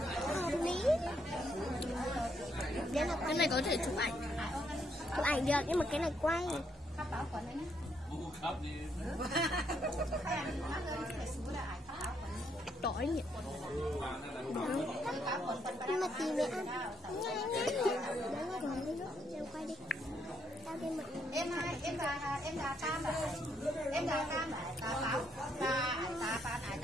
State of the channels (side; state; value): both; normal; correlation 0.74